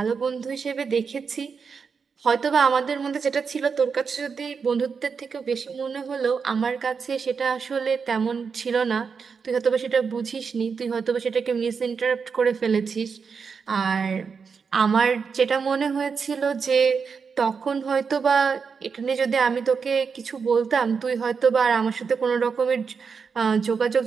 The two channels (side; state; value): left; quieter; 5.7 dB